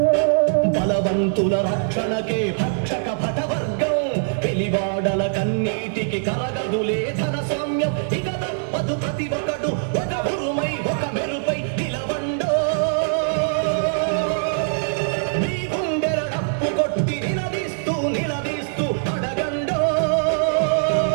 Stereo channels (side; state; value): left; silent; digital silence